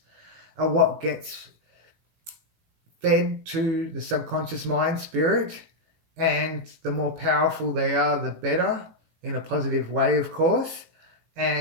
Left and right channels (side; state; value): left; late; 18 ms